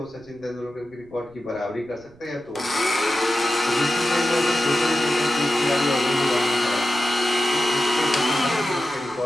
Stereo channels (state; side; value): noise; right; rumble, 27 dB below the sound